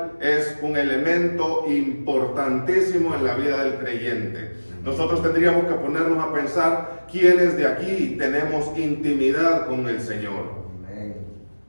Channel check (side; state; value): both; inverted; correlation -1.00